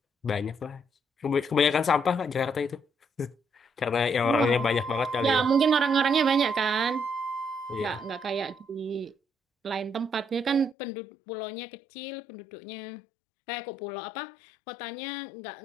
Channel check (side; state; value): right; drops out; at 10.8 s